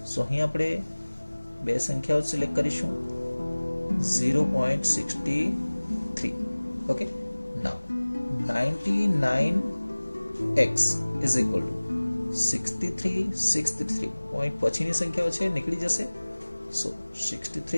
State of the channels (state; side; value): inverted; both; correlation -1.00